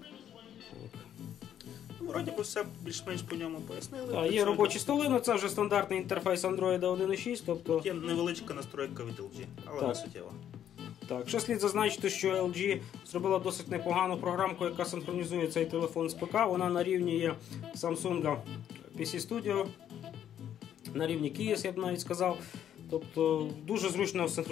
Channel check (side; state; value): right; quieter; 10.1 dB